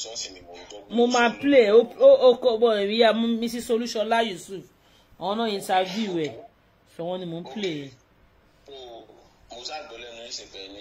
sọ́ọ̀sì ni mo ń gbọ́. mo máa play ó kọ́ bọ̀ ìyá Mrs. Olúṣọlá Yusuf àwọn náà interview ẹ̀ sọ wọ́n ni mo ń play. mo ṣàgbọ́ lẹ́nu ìsìnkẹ́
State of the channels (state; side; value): identical; both; correlation 1.00